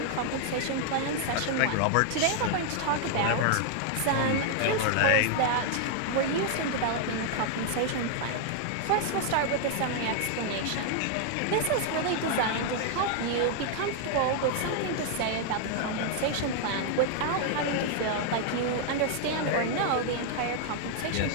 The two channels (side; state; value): both; different; correlation 0.00